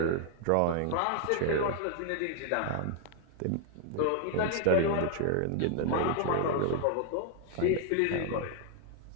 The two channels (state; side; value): different; both; correlation 0.00